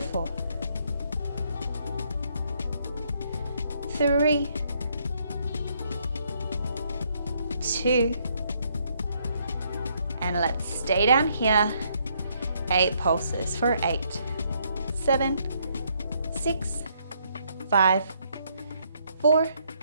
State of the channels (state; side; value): inverted; both; correlation -0.71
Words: 3, 2, and let's stay down here. 8 pulses for 8, 7, 6, 5, 4,